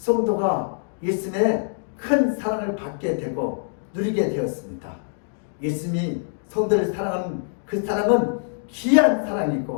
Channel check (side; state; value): right; silent; digital silence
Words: 예수님의 큰 사랑을 받게 되고 누리게 되었습니다. 예수님이 성도를 사랑하는 그 사랑은 귀한